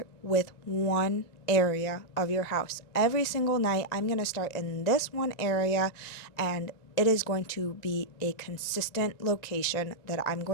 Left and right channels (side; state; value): right; late; 1.9 ms